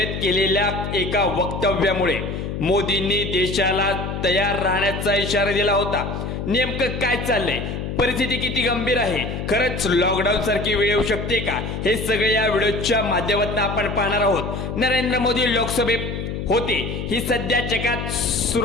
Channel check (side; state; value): left; noise; hum, 5 dB below the sound